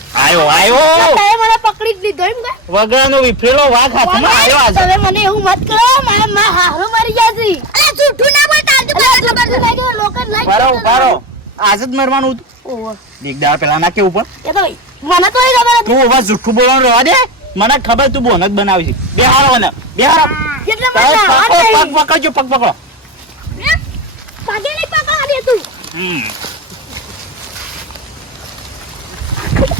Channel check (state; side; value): normal; both; correlation 0.23